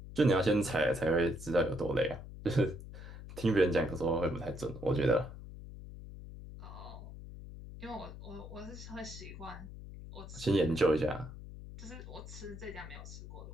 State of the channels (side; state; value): left; noise; hum, 13 dB below the sound